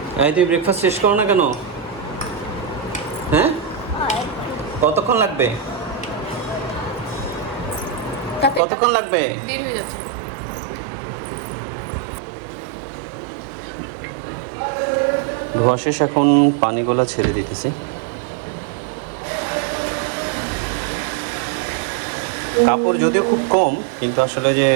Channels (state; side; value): drops out; left; at 8.6 s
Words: এই তুই ব্রেকফাস্ট শেষ করো না কেন? হ্যাঁ, কতক্ষণ লাগবে? কতক্ষণ লাগবে? দেরি হয়ে যাচ্ছে। ধোয়া শেষ, এখন পানিগুলো ছেড়ে দিতেছি। কাপড় যদিও খুব কম, কিন্তু আসলে যে